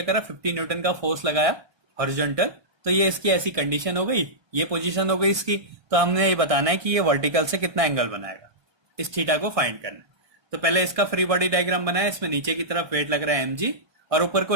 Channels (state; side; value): late; left; 1.2 ms